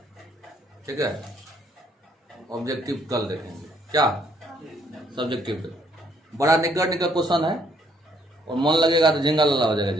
ठीक है। ऑब्जेक्टिव कल देखेंगे, क्या सब्जेक्टिव देखो। बड़ा निकट क्वेश्चन है और मन लगेगा तो झिंगा लल्ला हो जाएगा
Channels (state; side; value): normal; both; correlation 0.67